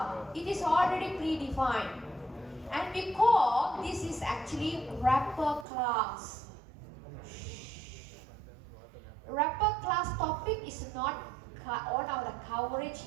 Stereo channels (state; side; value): drops out; left; at 5.7 s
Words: It is already predefined. And we call this is actually wrapper class. Wrapper class topic is not on our coverage